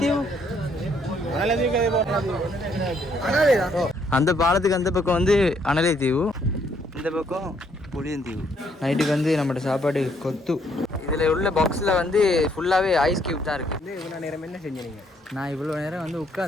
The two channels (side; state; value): both; normal; correlation 0.69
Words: அந்த பாலத்துக்கு அந்த பக்கம் வந்து அனலைத்தீவு, இந்த பக்கம் புளியந்தீவு. நைட்டுக்கு வந்து நம்மளோட சாப்பாடு கொத்து. இதில் உள்ள பாக்ஸில் வந்து ஃபுல்லாகவே ஐஸ் கியூப் தான் இருக்குது. இவ்வளோ நேரம் என்ன செஞ்சீங்க? நான் இவ்வளோ நேரம் வந்து